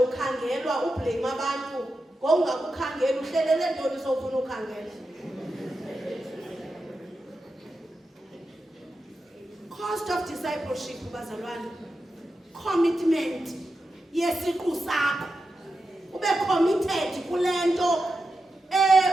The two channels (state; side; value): normal; both; correlation 0.89